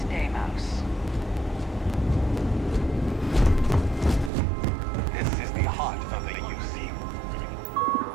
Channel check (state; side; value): drops out; left; at 4.3 s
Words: day, Mouse. This is the heart of the UC.